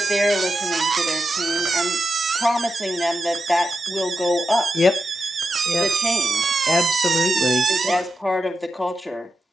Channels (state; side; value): normal; both; correlation 0.88